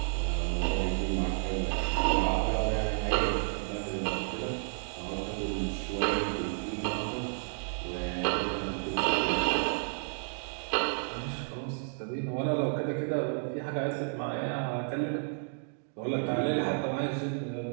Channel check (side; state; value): left; silent; digital silence